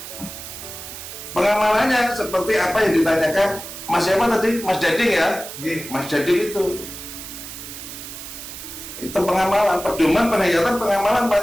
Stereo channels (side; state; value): right; noise; hiss, 11 dB below the sound